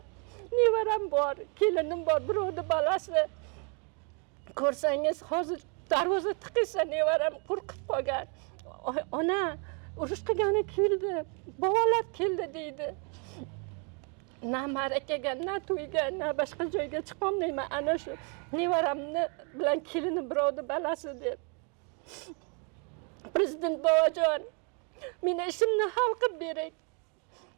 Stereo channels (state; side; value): quieter; left; 36.5 dB